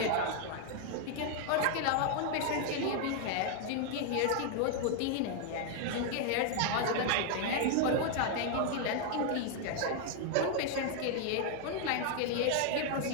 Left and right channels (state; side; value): different; both; correlation 0.00